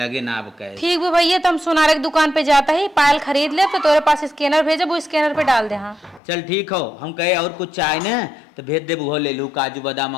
ना अब कहे ठीक है भैया तो हम सोनारे की दुकान पे जाता है पायल खरीद ले तो तेरे पास स्कैनर भेजे वो स्कैनर पे डाल दे हाँ चल ठीक हो हम कहे और कुछ चाहे ना तो भेज दे वो ले लू काजू बादाम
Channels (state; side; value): drops out; right; at 6.2 s